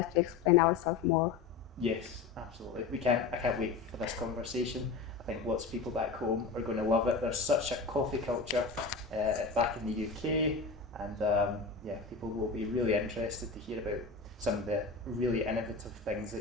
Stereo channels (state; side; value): quieter; right; 4.7 dB